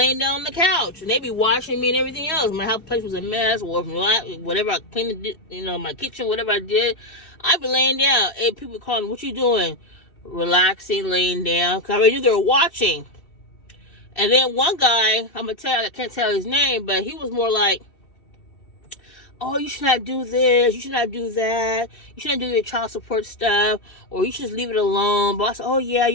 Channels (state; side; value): late; right; 3.0 ms